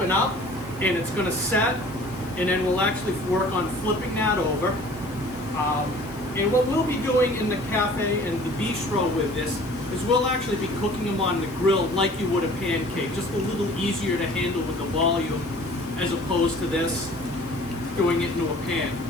up, and it's going to set, and then we'll actually work on flipping that over. And what we'll be doing in the cafe and the bistro with this is we'll actually be cooking them on the grill like you would a pancake, just a little easier to handle with the volume as opposed to this, doing it into a pan.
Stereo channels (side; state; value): left; noise; hiss, 25 dB below the sound